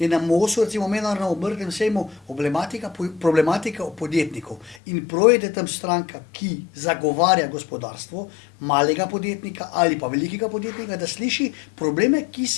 na MOS-u, recimo mednarodnem obrtnem sejmu, problematika podjetnikov. In prav je, da tam stranka, ki zagovarja gospodarstvo, malega podjetnika ali pa velikega podjetnika, da sliši probleme, ki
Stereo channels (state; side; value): drops out; right; at 4.8 s